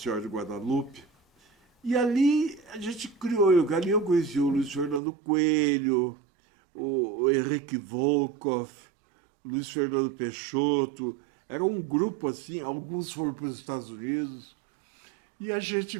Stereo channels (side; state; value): left; drops out; at 5.0 s